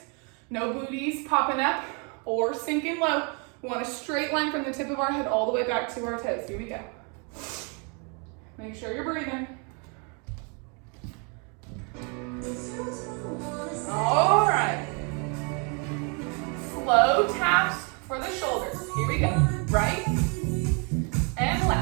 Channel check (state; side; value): quieter; left; 35.2 dB